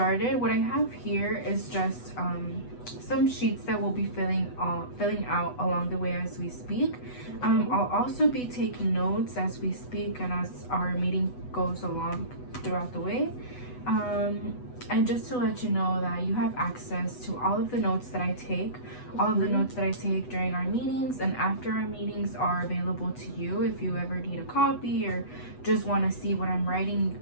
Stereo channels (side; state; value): right; late; 8.1 ms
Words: What I have here is just some sheets that we'll be filling out along the way as we speak. I'll also be taking notes as we speak and as our meeting goes along throughout the way. And just to let you know that you have access to all of the notes that I take. All of the notes that I take during our meetings and after our meetings are available to you. If you ever need a copy or just want to see what I'm writing,